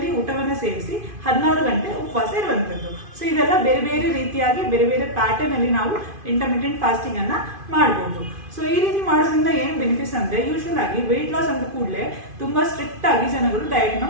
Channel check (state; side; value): late; left; 2.5 ms